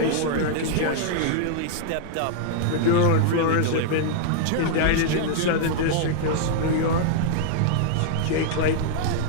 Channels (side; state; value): both; different; correlation -0.01